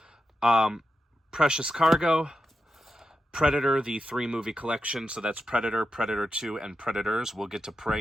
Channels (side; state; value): both; normal; correlation 0.88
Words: Precious Cargo, Predator, the 3-movie collection. So that's Predator, Predator 2, and Predators. We'll get to